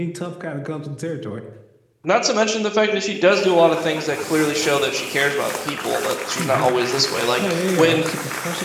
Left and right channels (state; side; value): identical; both; correlation 1.00